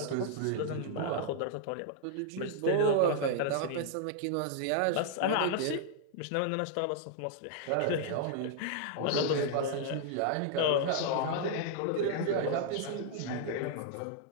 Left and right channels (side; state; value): both; different; correlation 0.00